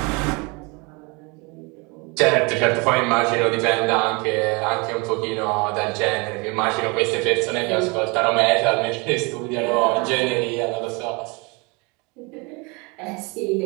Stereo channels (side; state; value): left; quieter; 28.9 dB